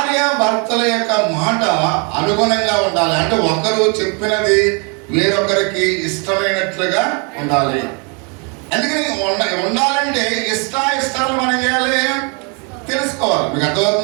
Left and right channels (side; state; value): left; quieter; 34.8 dB